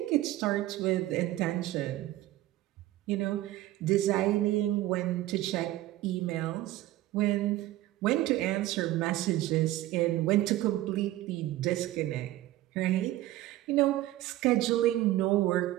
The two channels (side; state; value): left; quieter; 15.6 dB